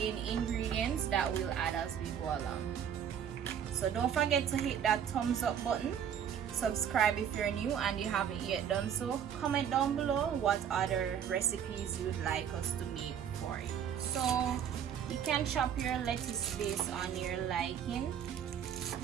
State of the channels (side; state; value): left; quieter; 8.7 dB